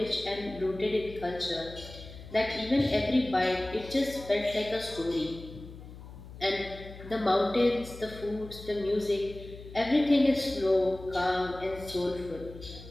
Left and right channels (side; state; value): left; noise; hum, 15 dB below the sound